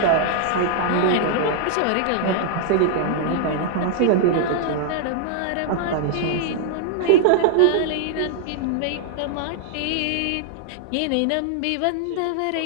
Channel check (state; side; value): different; both; correlation 0.00